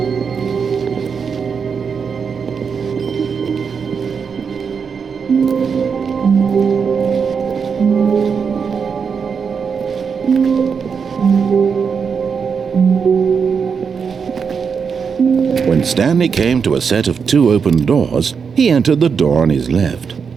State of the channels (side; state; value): left; quieter; 6.1 dB